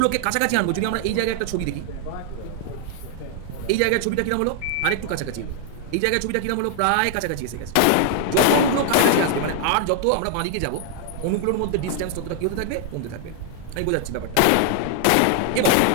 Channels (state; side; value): different; both; correlation 0.00